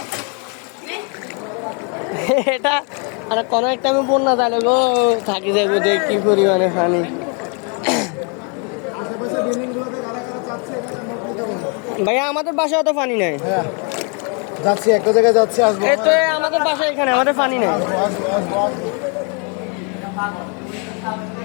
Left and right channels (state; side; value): quieter; right; 37.0 dB